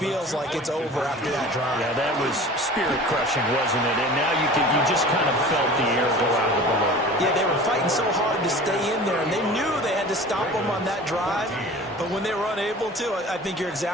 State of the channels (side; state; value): both; normal; correlation 0.41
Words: like it's over after that drive. Yeah, that was spirit-crushing, wasn't it? And now you just kind of felt the air go out of the balloon. Yeah, they were fighting so hard to stay in there, and they knew they had to stop them on that drive. But when they were unable to, I think you're